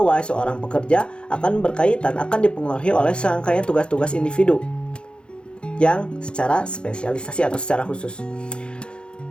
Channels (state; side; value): late; right; 0.054 ms